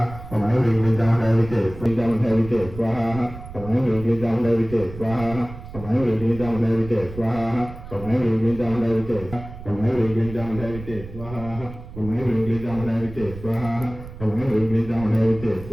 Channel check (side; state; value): right; noise; rumble, 13 dB below the sound